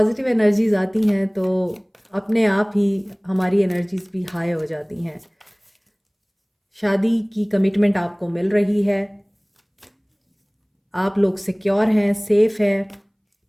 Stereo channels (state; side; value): identical; both; correlation 1.00